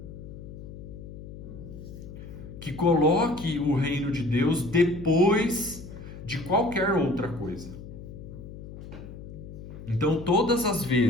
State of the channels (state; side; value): noise; left; hum, 13 dB below the sound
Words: Que coloque o reino de Deus depois de qualquer outra coisa. Então, todas as